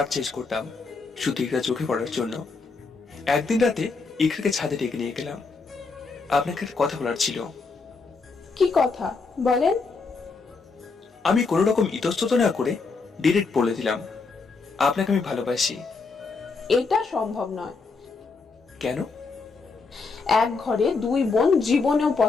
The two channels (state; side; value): quieter; right; 4.4 dB